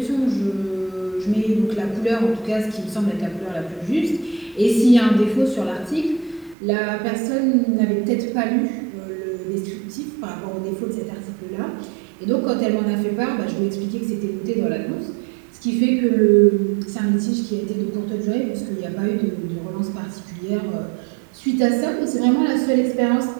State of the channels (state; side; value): drops out; left; at 6.6 s